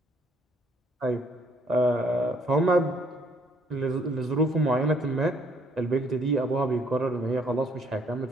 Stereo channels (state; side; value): normal; both; correlation 0.65